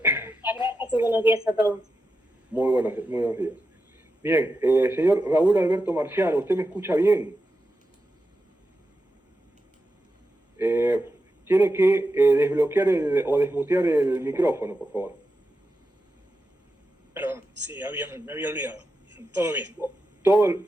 buenos días a todos. Muy buenos días. Bien, señor Raúl Alberto Marciano, ¿usted me escucha bien? Tiene que desbloquear o desmutear el micrófono, por favor. Perdón, sí, me había olvidado. Todo bien.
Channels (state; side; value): normal; both; correlation 0.89